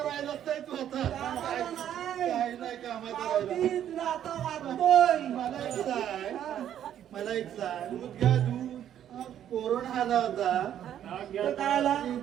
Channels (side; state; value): left; quieter; 10.5 dB